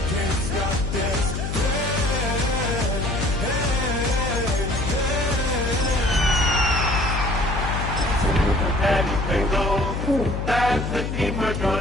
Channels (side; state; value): left; noise; hum, 3 dB below the sound